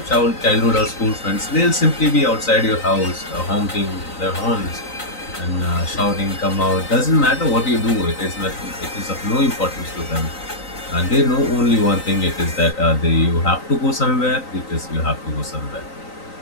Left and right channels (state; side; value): late; right; 3.9 ms